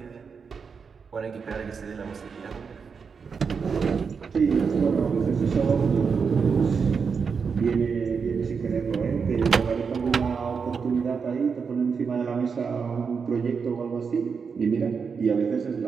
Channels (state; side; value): quieter; left; 5.8 dB